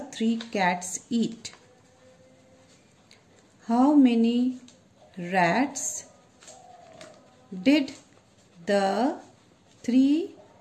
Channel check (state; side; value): identical; both; correlation 1.00